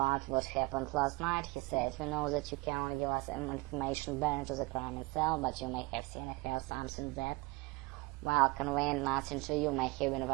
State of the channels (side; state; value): left; quieter; 24.0 dB